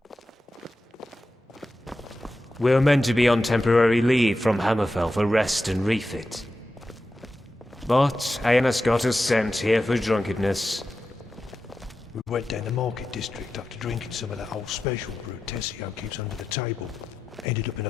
We're meant to be on temporary leave from Hammerfell for rest and refit. But Aenas got us sent here for drunkenness. We went down the market district after drinking some of that old special brew Tessio keeps under the table. Ended up in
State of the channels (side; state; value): both; normal; correlation 0.91